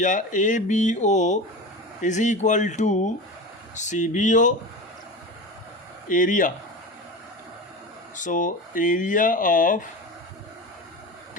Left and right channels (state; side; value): normal; both; correlation 0.28